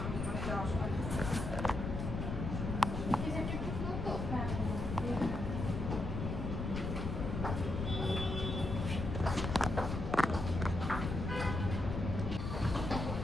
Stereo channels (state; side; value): noise; left; rumble, 3 dB below the sound